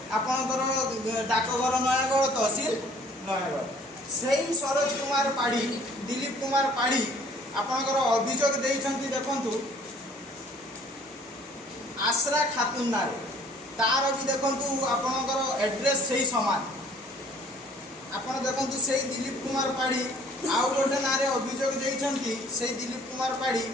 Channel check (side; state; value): both; normal; correlation 0.56